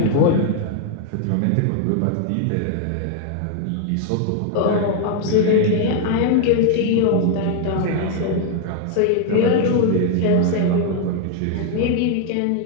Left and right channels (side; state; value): both; different; correlation 0.00